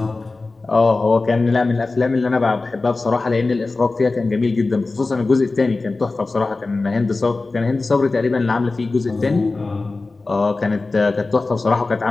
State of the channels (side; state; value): right; quieter; 3.5 dB